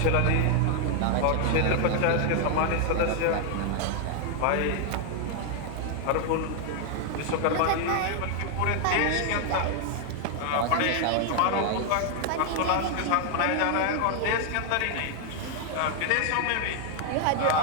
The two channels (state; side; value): different; both; correlation 0.00